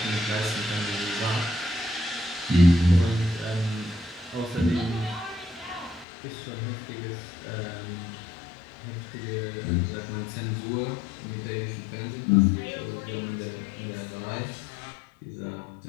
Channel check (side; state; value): right; drops out; at 6.1 s